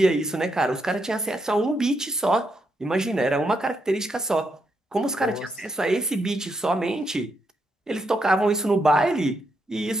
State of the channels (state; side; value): normal; both; correlation 0.80